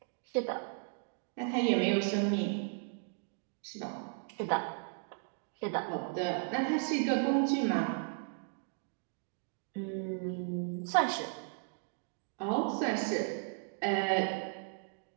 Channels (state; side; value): silent; left; 54 dB below the other